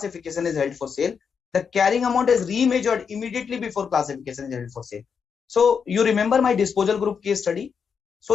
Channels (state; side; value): quieter; right; 6.4 dB